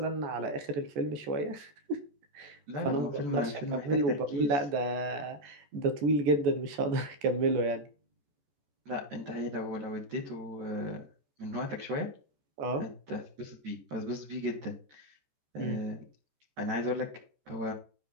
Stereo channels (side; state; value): left; late; 14 ms